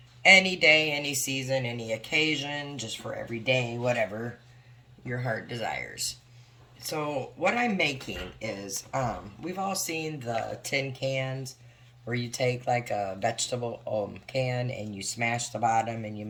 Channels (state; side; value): identical; both; correlation 1.00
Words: day, any season, any occasion, just for every day, whatever your heart desires. So what I'm making is, we've all seen the tin cans where you take like a vegetable can and you smash the bottom and you